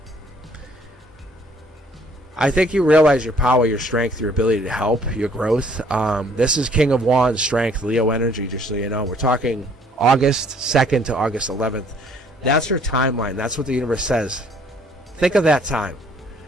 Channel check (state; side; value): normal; both; correlation 0.61